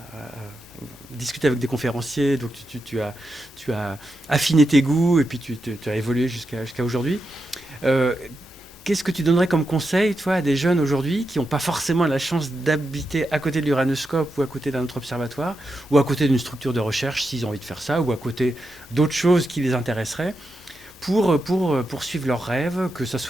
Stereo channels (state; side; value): normal; both; correlation 0.87